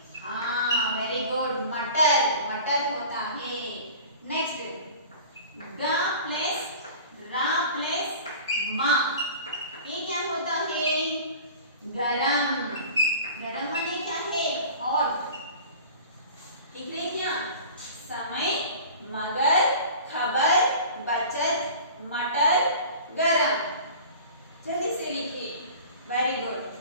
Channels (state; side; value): inverted; both; correlation -0.40